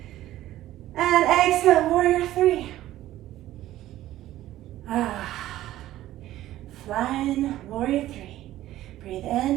And exhale, warrior three. Flying warrior three. Breathe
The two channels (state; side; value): quieter; left; 14.4 dB